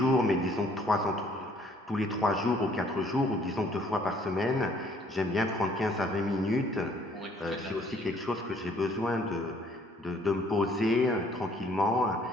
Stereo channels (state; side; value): normal; both; correlation 0.61